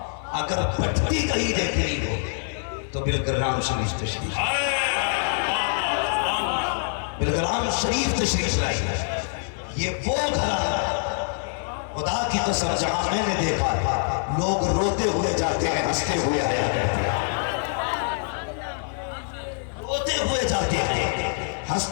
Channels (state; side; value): silent; right; digital silence